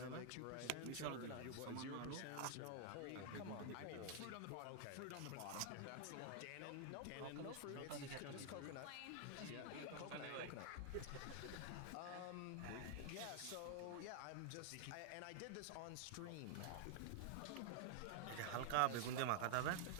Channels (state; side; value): different; both; correlation 0.00